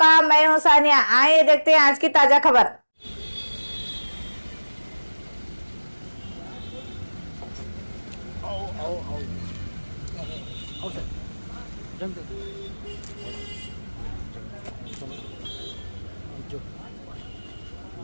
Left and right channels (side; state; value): both; inverted; correlation -1.00